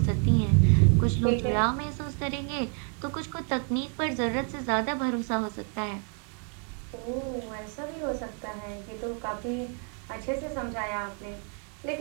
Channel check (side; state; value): left; quieter; 39.9 dB